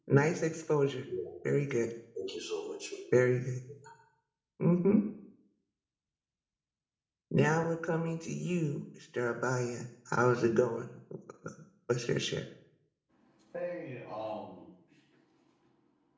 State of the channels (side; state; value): both; identical; correlation 1.00